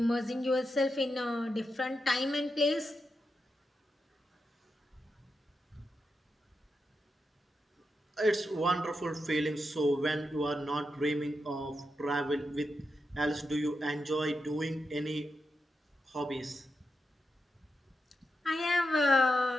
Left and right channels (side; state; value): both; normal; correlation 0.87